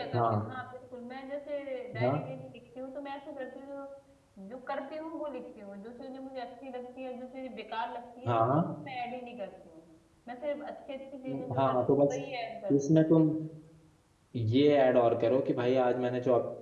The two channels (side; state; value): both; identical; correlation 1.00